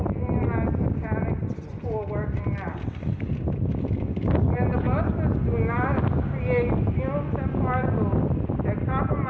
unionized mechanics who are working now. When the buses do not create fumes and particles that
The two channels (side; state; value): both; identical; correlation 1.00